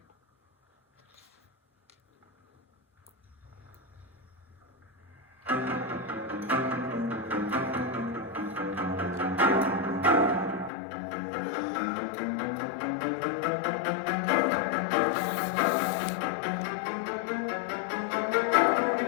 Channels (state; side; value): drops out; right; at 10.7 s